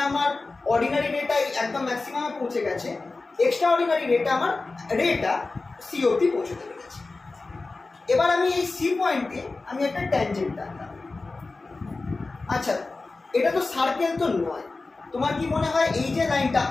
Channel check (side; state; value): right; quieter; 3.6 dB